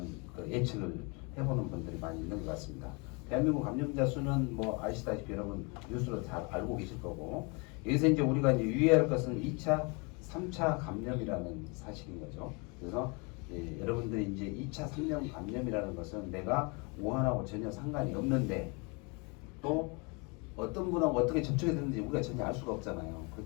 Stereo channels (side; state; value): right; quieter; 31.0 dB